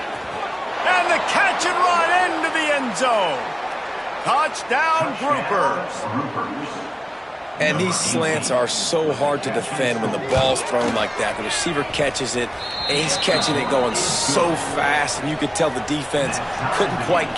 And the catch and run into the end zone. Touchdown, groupers. And these slants are so hard to defend when the ball's thrown like that. The receiver catches it, and he's catching it going so fast, and you could tell the defense couldn't quite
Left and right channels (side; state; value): both; identical; correlation 1.00